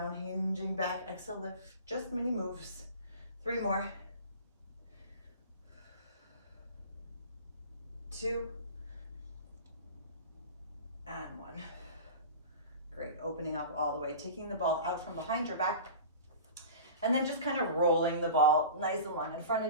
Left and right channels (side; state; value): both; inverted; correlation -0.36